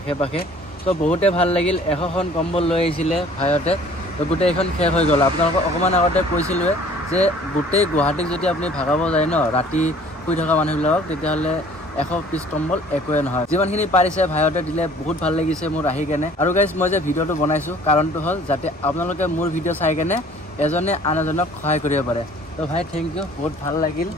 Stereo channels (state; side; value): normal; both; correlation 0.53